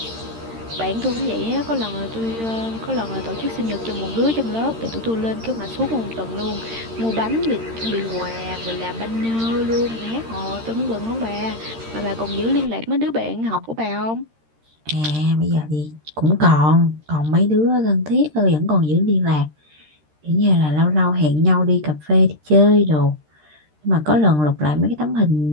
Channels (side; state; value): left; late; 13 ms